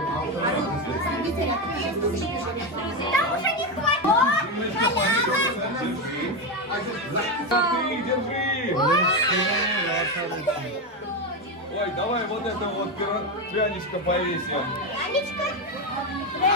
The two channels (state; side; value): normal; both; correlation 0.12